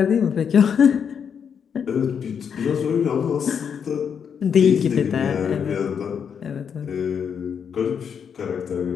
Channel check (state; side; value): quieter; right; 7.3 dB